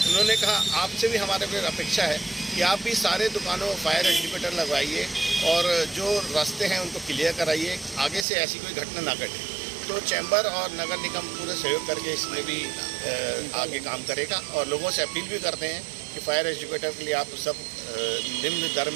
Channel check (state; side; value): drops out; left; at 8.2 s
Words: उन्होंने कहा आपसे भी हमारे को अपेक्षा है कि आप भी सारे दुकानों फायर एक्टिवेटर लगवाइए और जो रास्ते हैं उनको क्लियर कराइए, आगे से ऐसी कोई घटना ना घटे। तो चैम्बर और नगर निगम पूरे सहयोग करके इसमें भी आगे काम करेगा और लोगों से अपील भी करते हैं कि फायर एक्टिवेटर के लिए आप सब निम्न दर